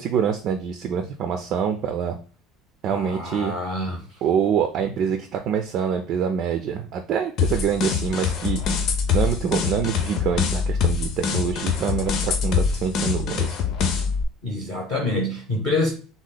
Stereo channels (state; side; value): normal; both; correlation 0.44